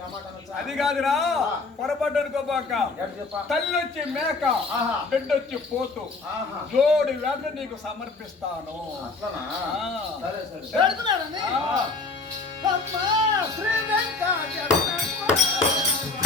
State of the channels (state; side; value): quieter; right; 3.8 dB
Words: ఆ మాట అనొచ్చా? అది కాదురా, పొరపాటు అనుకోబాక. ఎక్కడ చెప్పా? తల్లి వచ్చి మేక, ఆహా. బిడ్డ వచ్చి పోతు, ఆహా. జోడి వేట నీకు సమర్పిస్తాను. అట్లనా? ఆ. సరే సరే. పెడుతున్నానండి. ఆ. అమ్మా శ్రీ వెంకటేశ్వర